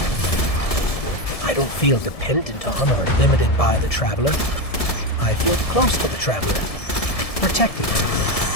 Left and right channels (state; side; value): late; right; 1.7 ms